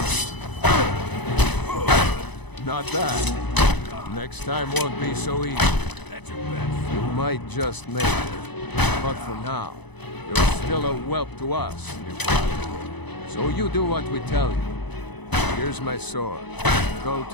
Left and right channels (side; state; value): right; late; 0.99 ms